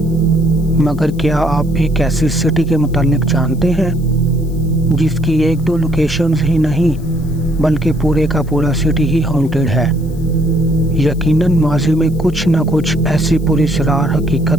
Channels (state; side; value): noise; left; hiss, 26 dB below the sound